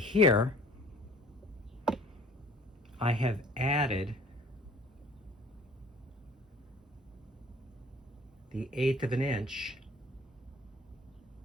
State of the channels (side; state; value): both; normal; correlation 0.52